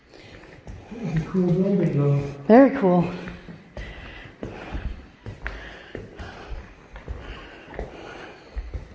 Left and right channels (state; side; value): identical; both; correlation 1.00